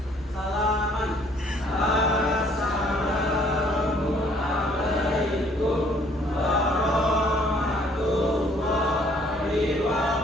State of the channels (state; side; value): normal; both; correlation 0.61